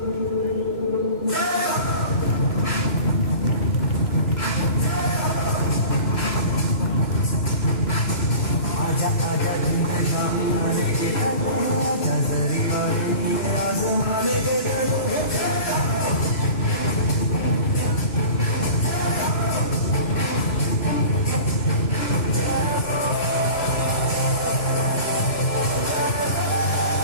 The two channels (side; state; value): right; late; 3.0 ms